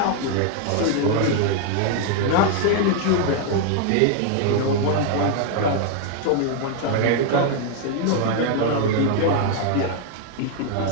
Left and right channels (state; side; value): different; both; correlation 0.00